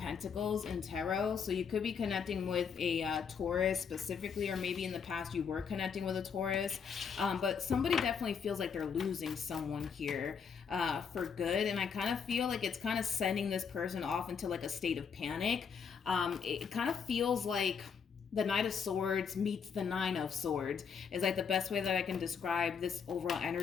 in tarot. So you could be connecting with a Taurus specifically, or maybe in the past you were connecting with a Taurus. But somebody definitely feels like they're losing someone here for good. And I kind of feel like it's kind of sending this person off into like a state of panic. It kind of feels like the Knight of Swords meets the Nine of Swords is like the best way that I can describe this overall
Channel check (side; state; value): right; quieter; 6.5 dB